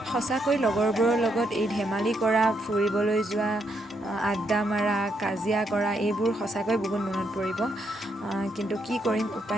সঁচাকৈ লগৰবোৰৰ লগত এই ধেমালি কৰা, ফুৰিবলৈ যোৱা, আড্ডা মাৰা, কাজিয়া কৰা এইবোৰ সঁচাকৈ বহুত মনত পৰিব, কিন্তু কি কৰিম,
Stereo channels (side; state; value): both; normal; correlation 0.78